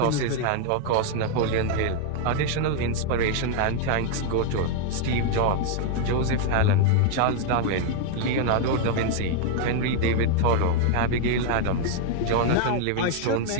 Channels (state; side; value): different; both; correlation 0.00